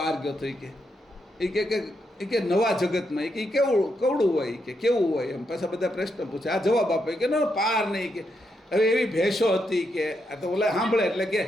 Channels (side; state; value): both; normal; correlation 0.81